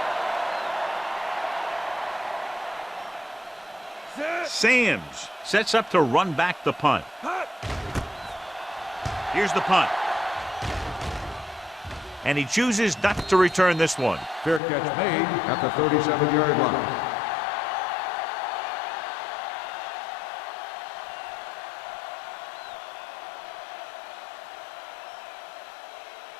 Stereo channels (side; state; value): right; drops out; at 14.6 s